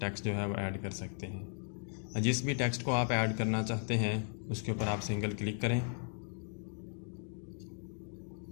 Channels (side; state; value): right; silent; 53 dB below the other